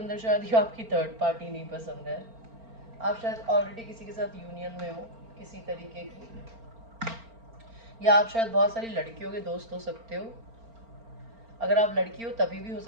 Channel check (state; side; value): late; left; 4.4 ms